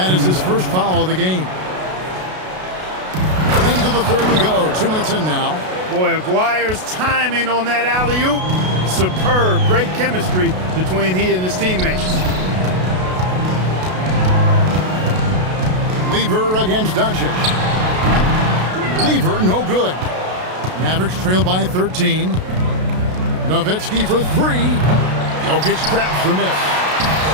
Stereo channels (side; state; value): left; late; 32 ms